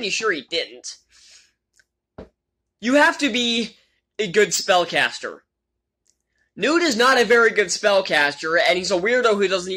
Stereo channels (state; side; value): identical; both; correlation 1.00